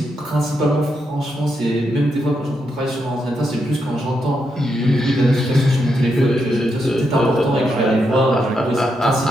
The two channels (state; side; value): normal; both; correlation 0.82